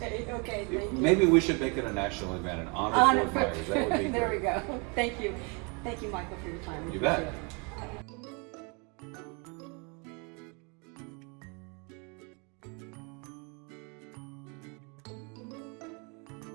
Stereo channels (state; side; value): quieter; left; 32.6 dB